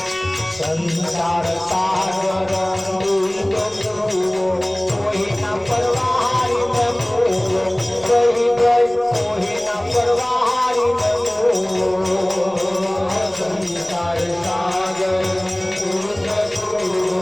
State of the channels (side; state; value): left; noise; rumble, 28 dB below the sound